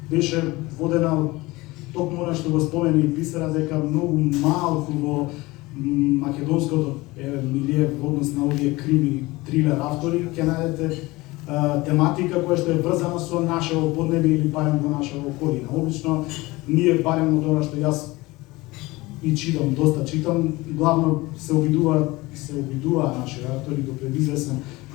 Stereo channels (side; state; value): right; quieter; 21.2 dB